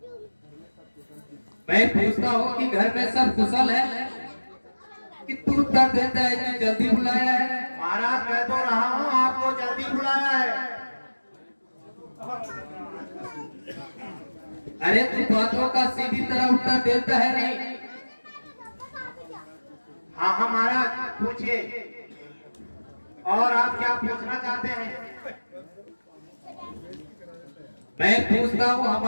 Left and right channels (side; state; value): both; inverted; correlation -1.00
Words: मैं पूछता हूँ कि घर में सब कुशल है कि तू उत्तर देता है कि जल्दी बुलाया है। महाराज, कह तो रहा हूँ आपको जल्दी बुलाया है। अरे तू बातों का सीधी तरह उत्तर देता है नहीं। हाँ हाँ महाराज, पूछिए। और आप क्या पूछना चाहते हैं? मैं पूछता हूँ